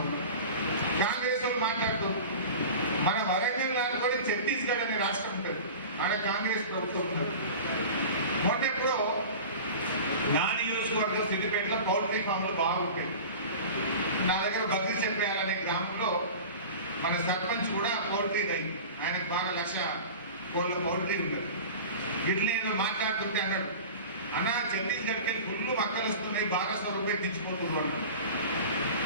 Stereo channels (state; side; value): inverted; both; correlation -0.35